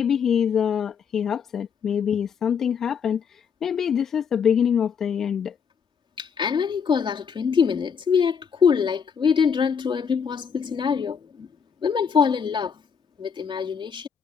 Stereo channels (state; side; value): quieter; right; 6.8 dB